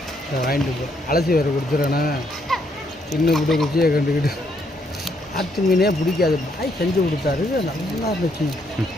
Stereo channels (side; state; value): both; normal; correlation 0.73